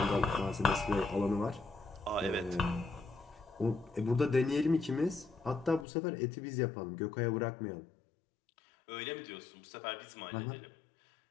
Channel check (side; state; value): right; drops out; at 5.9 s